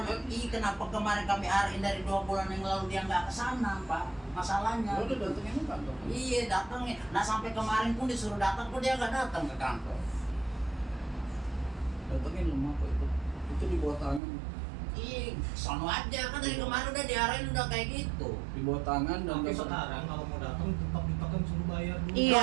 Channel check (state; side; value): drops out; left; at 14.2 s